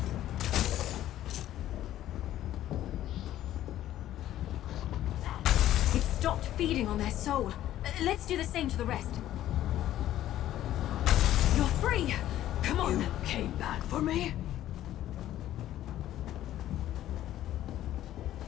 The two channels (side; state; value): right; quieter; 13.0 dB